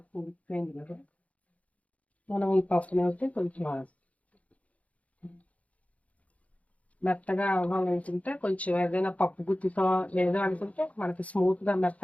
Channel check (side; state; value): right; late; 0.067 ms